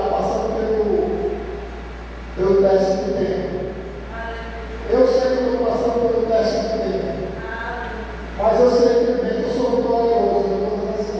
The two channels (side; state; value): both; identical; correlation 1.00